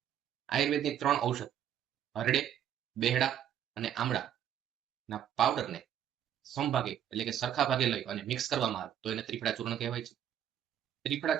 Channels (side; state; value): left; quieter; 10.0 dB